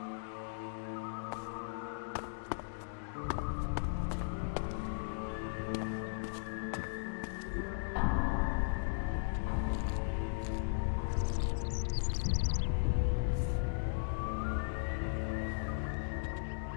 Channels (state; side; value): silent; right; digital silence